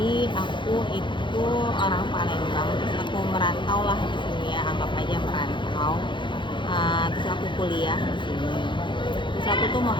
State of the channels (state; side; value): late; right; 0.23 ms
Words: aku itu orang Palembang, terus aku merantau lah di sini ya, anggap aja merantau. Terus aku kuliah di sini. Terus aku tuh mau